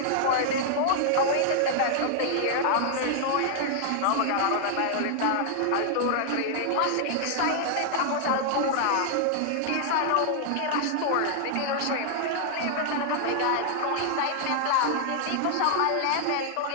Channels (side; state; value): both; different; correlation -0.01